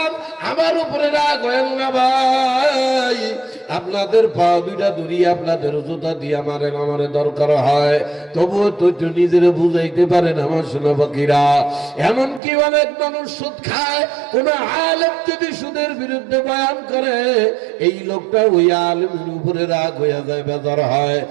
আমার উপরে রাগ হয়েন না ভাই। আপনাদের পা 2টা ধরিয়ে আপনাদের জুতা দিয়ে আমারে দরকার হয়, তবুও তো নিজের বুঝাইতে পারেন আমার সোনা পাখিরা। এমনকি অনেক মানুষ সুদ খায়, কোন আলেম যদি সুদের বিরুদ্ধে বয়ান করে, এই লোকটা ওই আলেমের উপরে রাগ হইয়া যায়, বেজার হয়।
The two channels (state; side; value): drops out; left; at 12.4 s